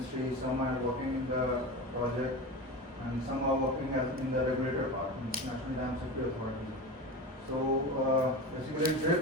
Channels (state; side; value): normal; both; correlation 0.26